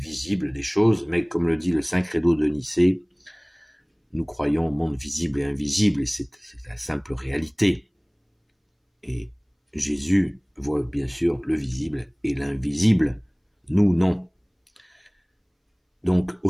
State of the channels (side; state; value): both; identical; correlation 1.00